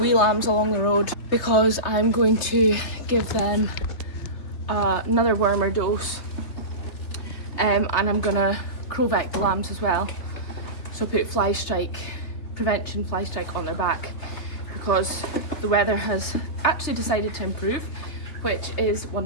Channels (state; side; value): late; right; 3.3 ms